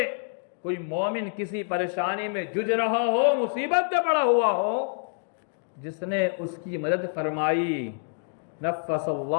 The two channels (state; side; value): silent; right; digital silence